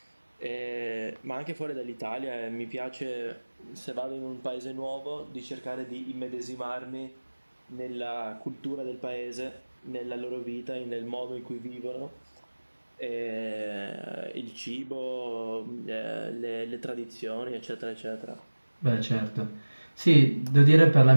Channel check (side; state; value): both; inverted; correlation -1.00